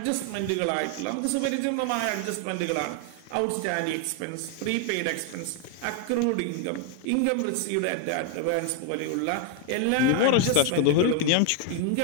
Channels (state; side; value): different; both; correlation 0.01